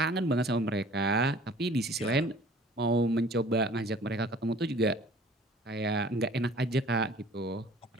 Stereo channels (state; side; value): normal; both; correlation 0.50